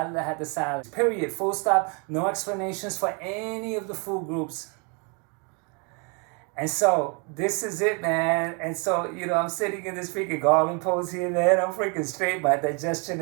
period, full stop, no explanations for any of the food groups. And so this is it, man. And so, I'm sitting in this freaking Garland pose here, man. I'm freaking straight. My digestion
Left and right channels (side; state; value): left; quieter; 34.5 dB